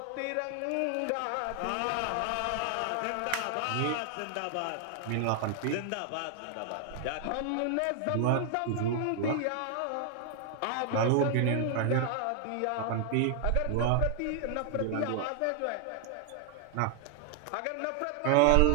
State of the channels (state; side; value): different; both; correlation 0.00